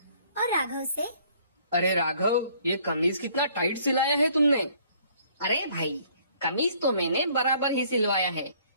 और राघव से, अरे राघव, ये कमीज कितना टाइट सिलाया है तुमने। अरे भाई, कमीज तो मैंने बराबर ही सिलवाया है।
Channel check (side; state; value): both; inverted; correlation -0.61